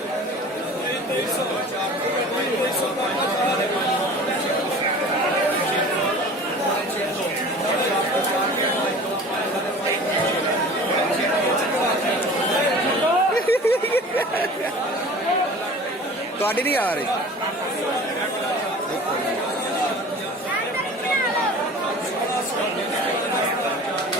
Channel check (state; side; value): normal; both; correlation 0.41